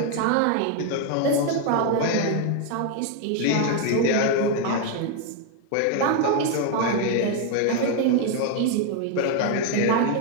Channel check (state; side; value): different; both; correlation 0.01